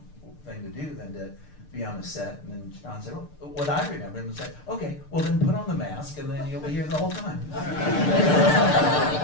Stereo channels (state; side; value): late; right; 6.7 ms